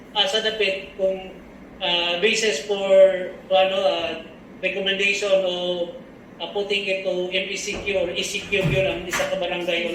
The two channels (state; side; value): identical; both; correlation 1.00